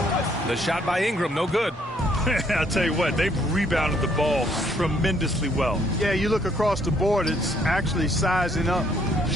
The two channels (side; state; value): both; normal; correlation 0.66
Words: The shot by Ingram, no good. I'll tell you what, they've rebounded the ball tremendously well. Yeah, you look across the board, it's actually sizing up,